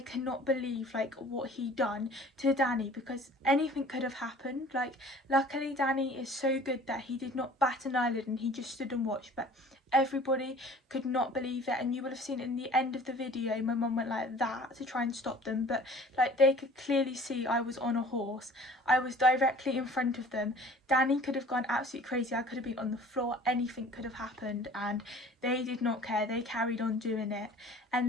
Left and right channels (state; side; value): normal; both; correlation 0.48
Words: cannot believe like what he done to Danny, because anything could have happened. Like luckily Danny is so good that he did not bat an eyelid and he just stood and watched, but everybody could not believe it. And you will have seen in the end of the video my mum went like that to try and stop them, but like they could clearly see I was on a horse. I was directly in front of them. Danny could have gone absolutely crazy, I could have been on the floor, anything could have happened, and they did not care. They carried on doing it.